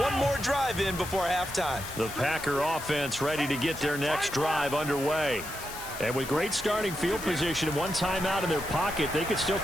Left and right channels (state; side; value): noise; left; hiss, 11 dB below the sound